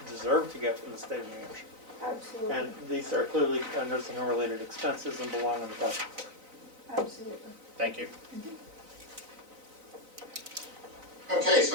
deserve to get from the state of New Hampshire. Absolutely, And these are clearly nursing home related expenses and belong on the cost report. absolutely. Thank you. Okay,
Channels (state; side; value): late; left; 4.0 ms